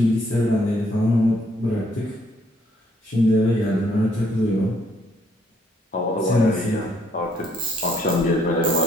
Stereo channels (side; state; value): both; normal; correlation 0.68